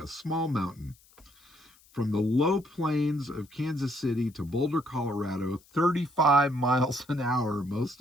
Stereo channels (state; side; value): noise; left; hiss, 29 dB below the sound